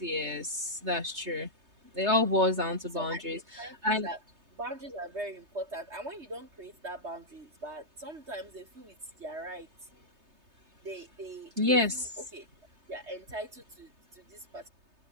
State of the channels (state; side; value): late; left; 3.3 ms